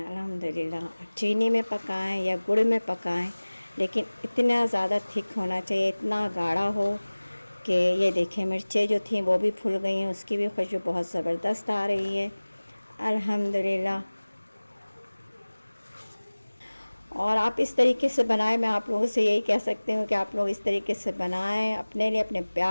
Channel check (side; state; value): both; inverted; correlation -1.00